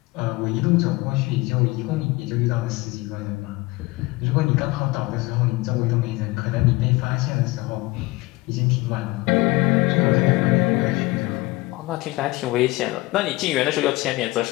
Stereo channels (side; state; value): right; quieter; 21.5 dB